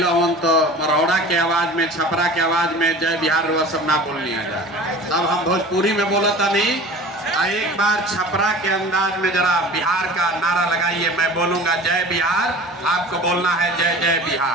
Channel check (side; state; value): both; normal; correlation 0.40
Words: हमन तो मरौड़ा के आवाज में, छपरा के आवाज में जय बिहार वो सब ना बोलनी आ जाए। तब हम भोजपुरी में बोलता नहीं। एक बार छपरा के अंदाज में जरा बिहार का नारा लगाइए। मैं बोलूंगा जय बिहार, आपको बोलना है जय जय